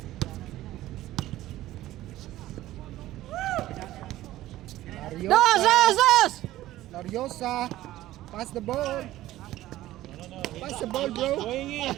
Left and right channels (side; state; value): left; quieter; 15.2 dB